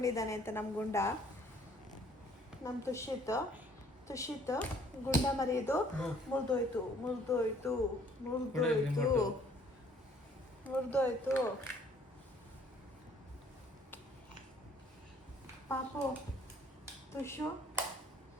ಅಂತ. ನಮ್ಮ ಗುಂಡ, ನಮ್ಮ ತುಷಿತ್ ಗುಂಡ ಮರಿಯೋದು ಮುರಿದೋಯ್ತು. ಪಾಪು ತುಷು,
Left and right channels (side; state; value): both; normal; correlation 0.59